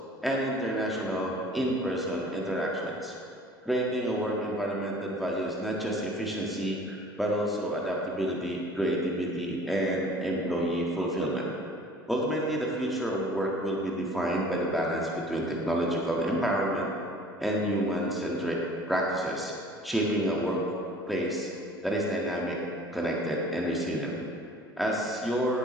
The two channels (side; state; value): both; normal; correlation 0.48